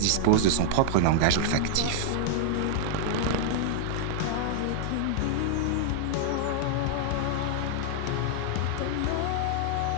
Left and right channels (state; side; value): different; both; correlation -0.01